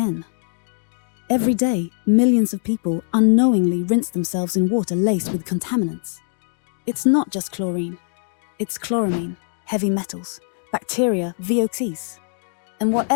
Every day, millions of people unknowingly rinse themselves in water laced with contaminants. It's not just chlorine. It's chloramine, heavy metals, bacteria, VOCs, and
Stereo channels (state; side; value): silent; right; 64 dB below the other